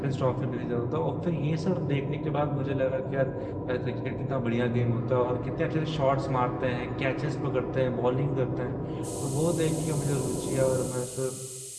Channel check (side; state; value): both; identical; correlation 1.00